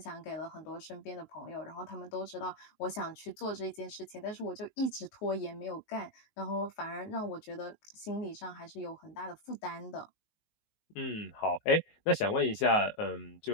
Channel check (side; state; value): right; late; 19 ms